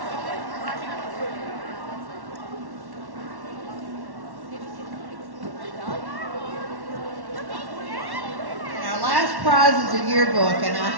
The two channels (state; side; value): late; left; 1.1 ms